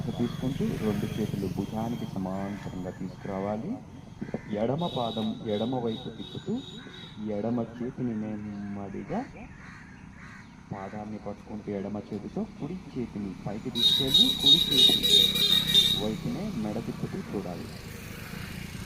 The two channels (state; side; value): identical; both; correlation 1.00